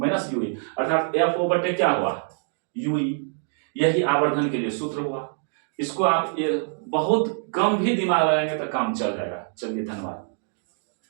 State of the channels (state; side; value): silent; left; 62 dB below the other